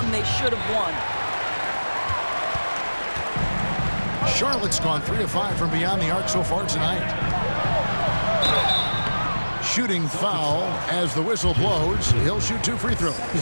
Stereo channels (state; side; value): inverted; both; correlation -1.00